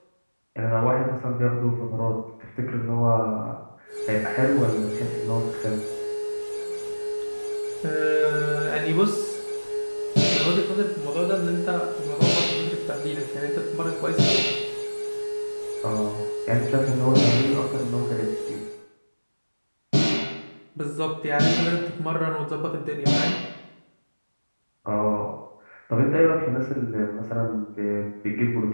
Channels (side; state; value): both; inverted; correlation -1.00